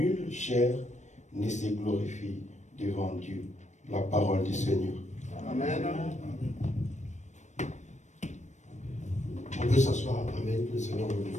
chair ne se glorifie devant Dieu. La parole du Seigneur. Amen. On peut s'asseoir. Amen. Que le Seigneur vous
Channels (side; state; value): right; late; 0.34 ms